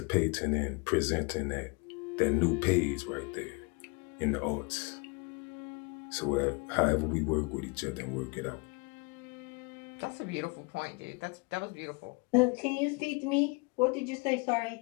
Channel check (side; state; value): right; quieter; 29.7 dB